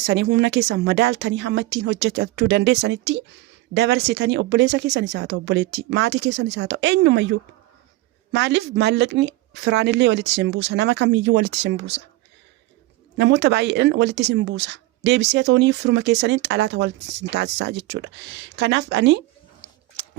humna keessan madaaltanii hamma ittiin hojjechuu dandeessanitti dabarsitanii obboleessa keessanis haa ta'u obboleettii maatii keessanis haa ta'u eenyumayyuu maaliif maallaqni firaanillee walitti sin buusa nama kamiyyuu walitti sin buusa namoota baay'een walitti sin buusa deebisee toonii firuma keessaniin xalaata walitti sin taasisaa jechuudha. Kanaaf ani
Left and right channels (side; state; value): left; quieter; 18.5 dB